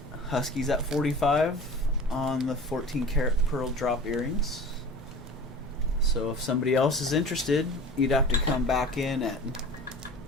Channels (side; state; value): both; normal; correlation 0.39